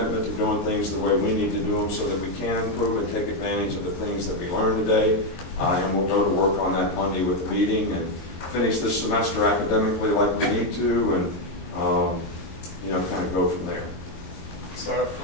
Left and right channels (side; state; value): right; late; 22 ms